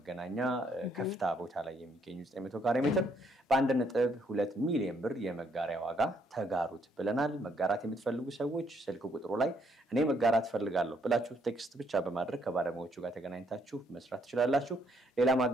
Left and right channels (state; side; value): normal; both; correlation 0.71